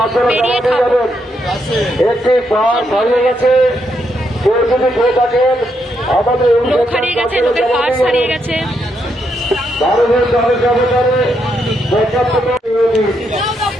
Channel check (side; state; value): both; normal; correlation 0.79